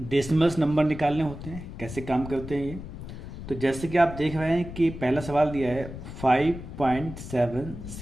नंबर निकालने होते हैं, कैसे काम करते हैं ये। तो जैसे कि आप देख रहे हैं कि पहला सवाल दिया है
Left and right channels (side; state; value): left; noise; rumble, 11 dB below the sound